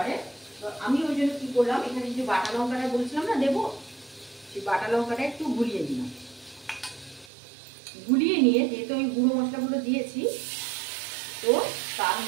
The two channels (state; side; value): drops out; left; at 7.3 s